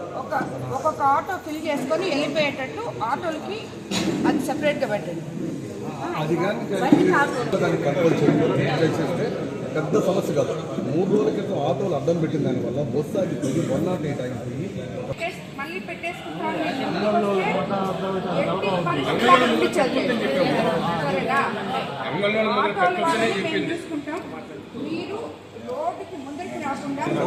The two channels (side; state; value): both; identical; correlation 1.00